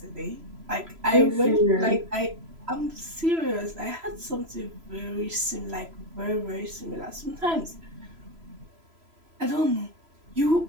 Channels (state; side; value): late; left; 3.0 ms